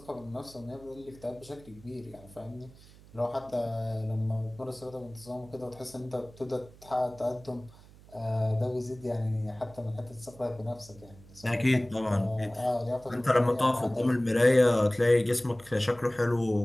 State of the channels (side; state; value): right; noise; hum, 22 dB below the sound